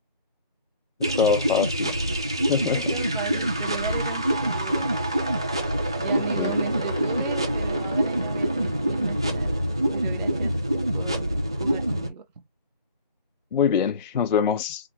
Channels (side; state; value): both; inverted; correlation -0.57